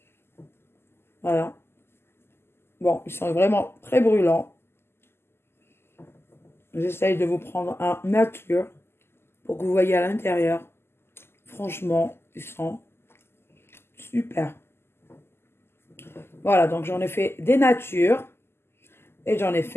Voilà. Bon, ils sont vraiment très brûlants. J'essaye de vous prendre un nature pour que vous voyez à l'intérieur. Franchement, ils sont super. Voilà, donc j'en ai fait des natures et j'en ai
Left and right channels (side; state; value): right; late; 0.12 ms